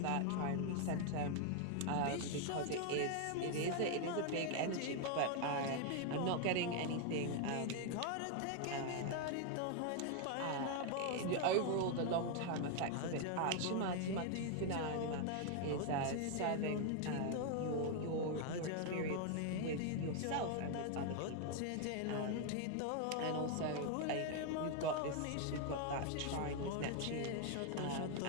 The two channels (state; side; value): different; both; correlation 0.01